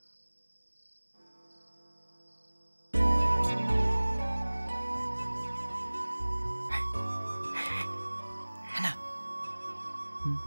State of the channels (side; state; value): both; inverted; correlation -1.00